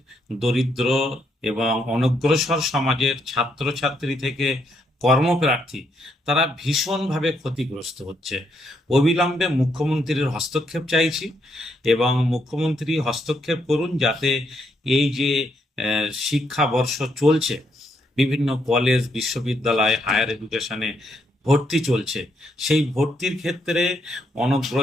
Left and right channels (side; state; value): both; normal; correlation 0.76